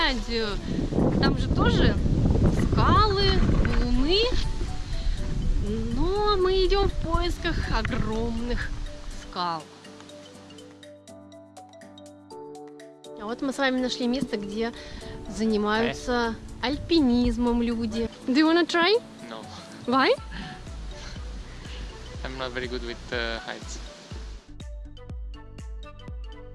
Там же тоже скалы, валуны. Но мы идем в поисках огромных скал. А вот мы с вами нашли место, где занимаются альпинизмом люди. Do you wanna try? No, Why? I'm not very good with heights.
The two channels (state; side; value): identical; both; correlation 1.00